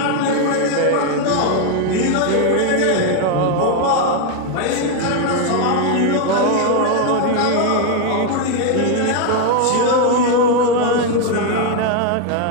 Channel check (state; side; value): different; both; correlation 0.01